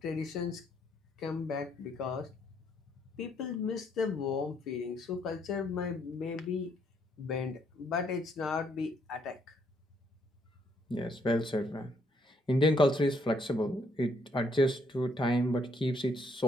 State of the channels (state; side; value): normal; both; correlation 0.71